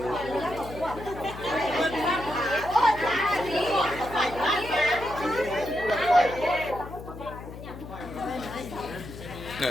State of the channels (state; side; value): noise; left; hum, 12 dB below the sound